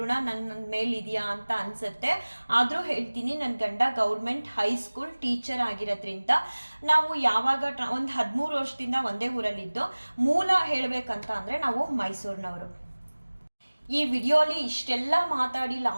ಋಣ ನನ್ನ ಮೇಲಿದೆಯಾ ಅಂತ ಅನಿಸುತ್ತೆ. ಆದರೂ ಹೇಳ್ತೀನಿ, ನನ್ನ ಗಂಡ ಗೌರ್ಮೆಂಟ್ ಹೈಸ್ಕೂಲ್ ಟೀಚರ್ ಆಗಿರೋದ್ರಿಂದ ನಾವು ಯಾವಾಗ ಒಂದು 13 ವರ್ಷದಿಂದ ಒಂದೇ ಊರಲ್ಲಿದ್ದು. ಮೂಲ ಹೇಳಬೇಕಂತ ಅಂದರೆ ನಾವು ಮೈಸೂರಿನವರು. ಈ ವಿಡಿಯೋಲಿ ಇಷ್ಟೆಲ್ಲ ಮಾತಾಡಿ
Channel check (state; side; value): inverted; both; correlation -1.00